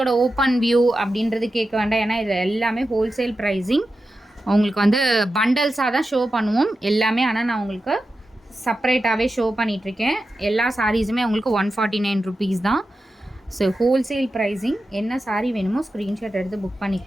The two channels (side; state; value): both; normal; correlation 0.91